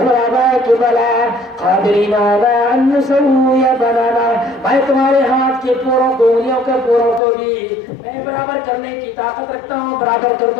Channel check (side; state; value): right; drops out; at 7.2 s